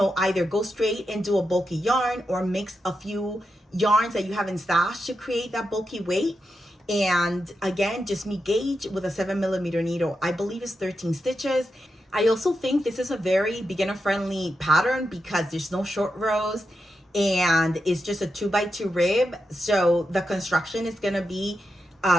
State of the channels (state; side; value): normal; both; correlation 0.87